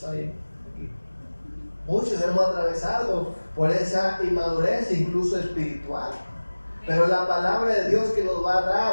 hay aquí? Muchos hemos atravesado por esa inmadurez, incluso espiritual. Pero la palabra de Dios que nos va a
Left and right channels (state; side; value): inverted; both; correlation -1.00